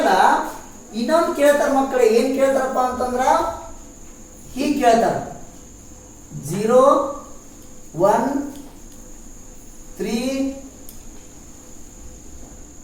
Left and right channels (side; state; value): both; identical; correlation 1.00